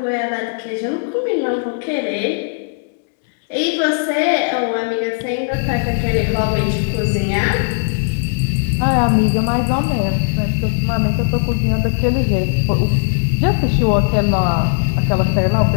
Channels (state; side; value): silent; right; digital silence